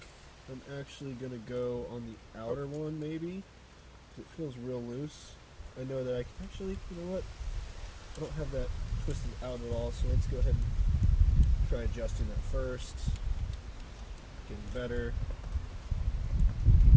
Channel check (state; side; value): identical; both; correlation 1.00